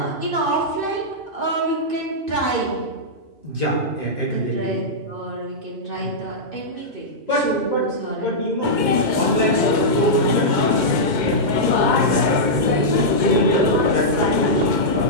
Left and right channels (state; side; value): late; left; 2.1 ms